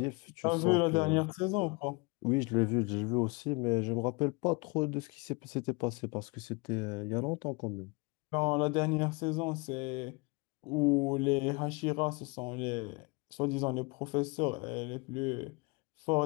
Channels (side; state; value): right; quieter; 28.1 dB